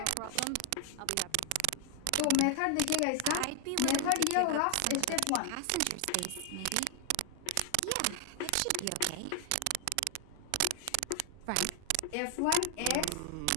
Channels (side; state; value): both; different; correlation 0.00